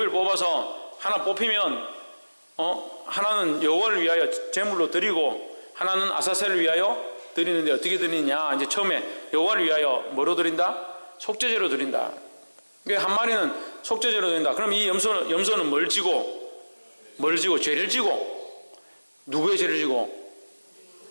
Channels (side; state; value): both; inverted; correlation -1.00